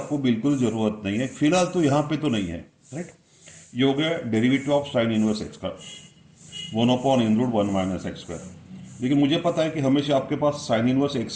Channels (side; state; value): both; identical; correlation 1.00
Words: बिल्कुल जरूरत नहीं है फिलहाल, तो यहां पे तो नहीं है. राइट. ये हो गया derivative of sine inverse x का 1/(1 - x²). लेकिन मुझे पता है कि हमेशा आपके पास साइन इनवर्स